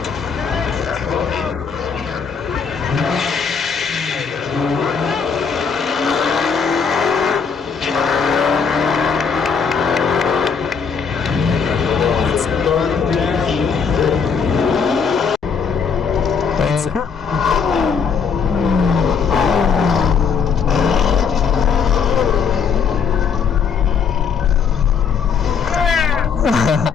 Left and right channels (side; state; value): right; quieter; 6.2 dB